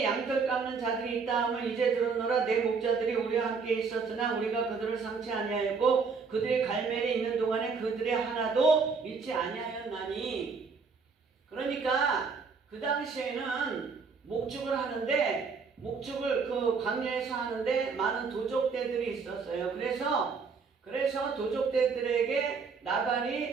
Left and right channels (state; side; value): quieter; left; 5.1 dB